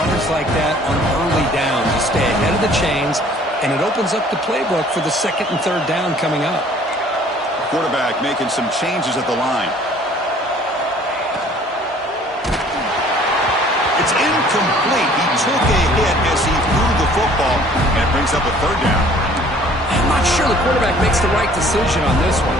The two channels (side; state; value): both; normal; correlation 0.54